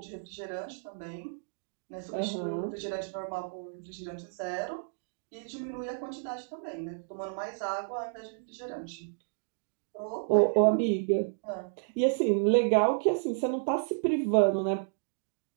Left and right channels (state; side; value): silent; left; digital silence